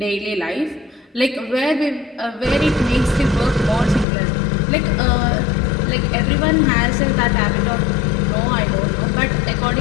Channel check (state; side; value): drops out; right; at 4.0 s